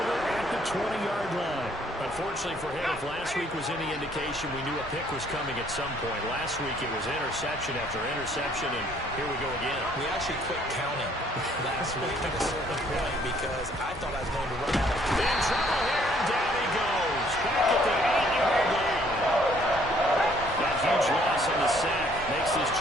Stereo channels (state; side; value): normal; both; correlation 0.63